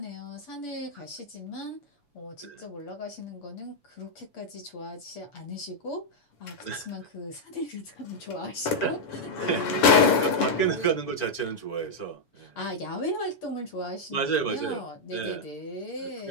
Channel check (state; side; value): late; right; 7.0 ms